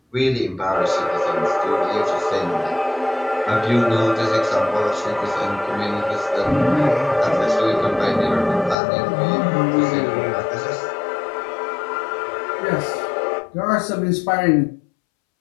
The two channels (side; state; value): right; drops out; at 8.8 s